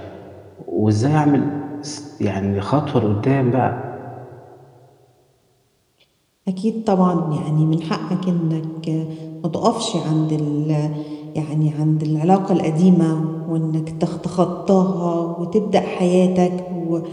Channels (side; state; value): both; identical; correlation 1.00